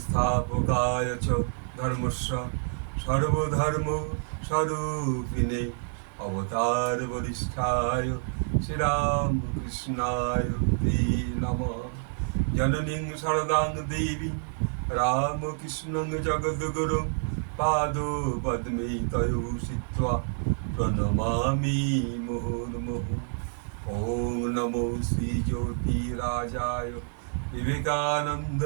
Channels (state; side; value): silent; left; digital silence